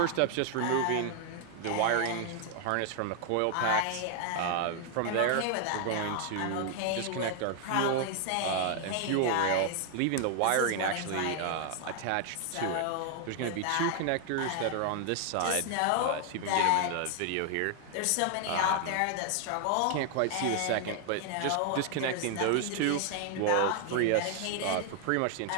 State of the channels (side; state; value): both; different; correlation 0.00